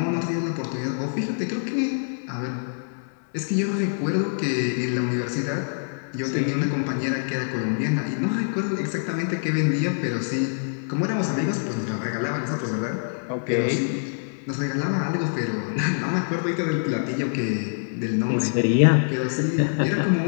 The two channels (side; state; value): right; silent; digital silence